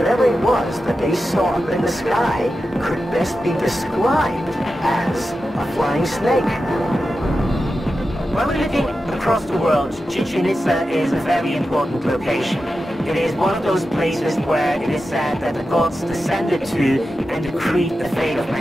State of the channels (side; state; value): both; normal; correlation 0.91